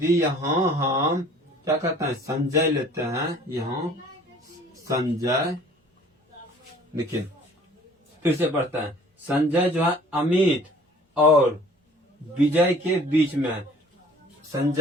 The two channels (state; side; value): normal; both; correlation 0.52